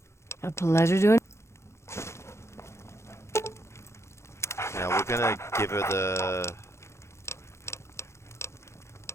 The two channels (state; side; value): late; right; 0.13 ms